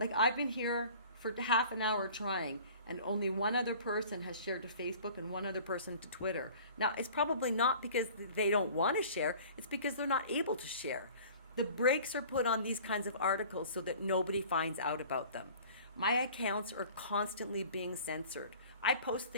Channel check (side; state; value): both; inverted; correlation -0.46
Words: I've been here for half an hour trying, and only one other person has shared to Facebook and one other person to Twitter. Now, it's probably not because they don't want to share. It's because they're not able to share. The brakes are put on these kinds of articles so that nobody finds out about them. My accounts are constantly being censored. I post